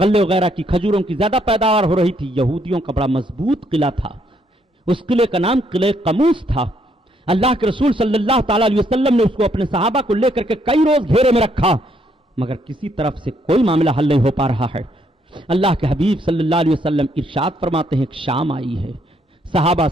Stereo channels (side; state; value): both; normal; correlation 0.71